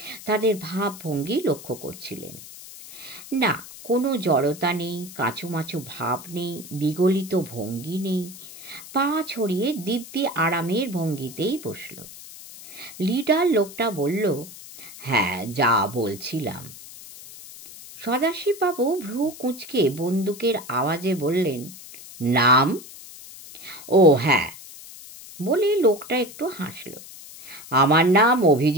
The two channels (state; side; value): noise; left; hiss, 16 dB below the sound